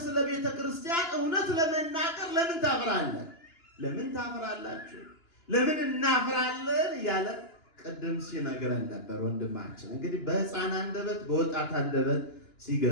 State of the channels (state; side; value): late; right; 2.9 ms